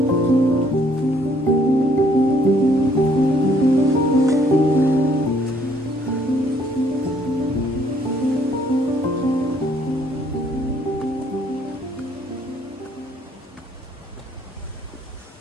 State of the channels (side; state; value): both; normal; correlation 0.65